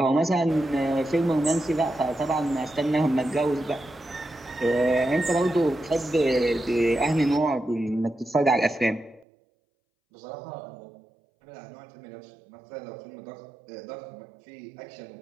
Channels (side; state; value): left; drops out; at 9.2 s